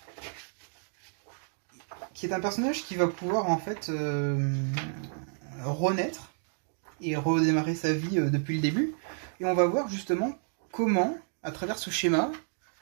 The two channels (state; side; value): silent; left; 58 dB below the other